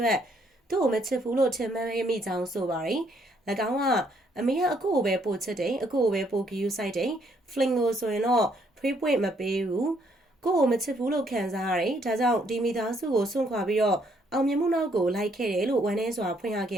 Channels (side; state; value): both; normal; correlation 0.69